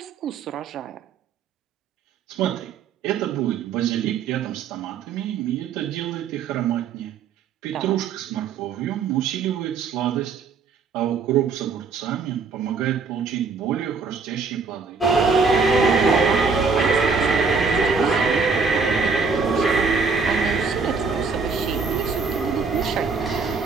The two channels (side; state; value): left; quieter; 5.0 dB